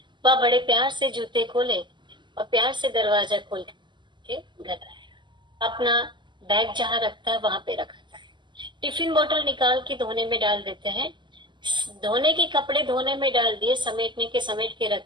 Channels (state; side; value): late; left; 0.22 ms